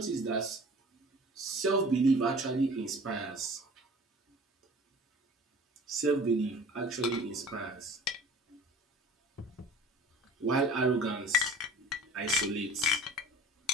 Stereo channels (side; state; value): both; normal; correlation 0.43